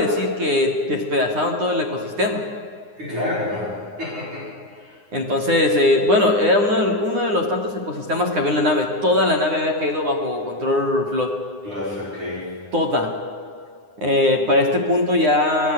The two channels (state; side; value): late; left; 9.7 ms